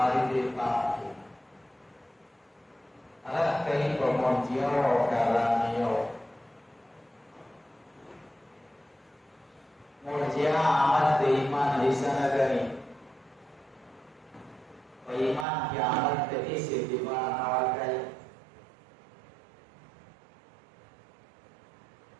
di Pak. Ada kaya pemonjio kalanio. Murjia amat di iman di sana gani. Iman kiamat terisi di mana awal kali.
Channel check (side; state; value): left; drops out; at 15.5 s